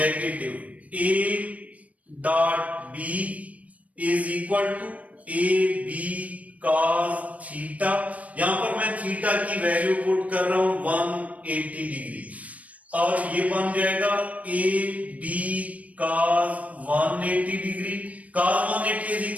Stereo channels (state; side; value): late; left; 0.068 ms